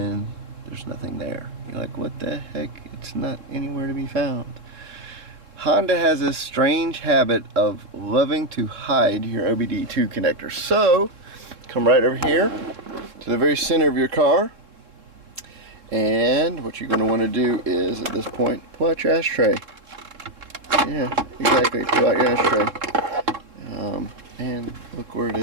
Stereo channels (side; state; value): left; late; 3.7 ms